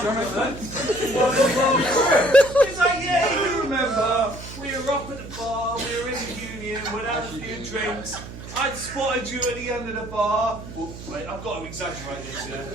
like, yeah, you remember, we were up at the bar, we were in the Union, we'd had a few drinks, I'd spotted you at the end of the bar. Well, wait, I've got to exaggerate this, yeah?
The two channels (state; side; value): noise; right; hum, 12 dB below the sound